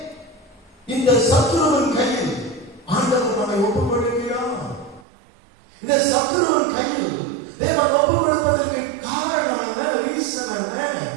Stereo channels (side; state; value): left; drops out; at 5.1 s